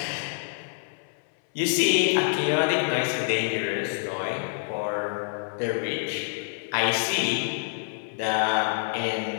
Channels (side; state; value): right; silent; 60 dB below the other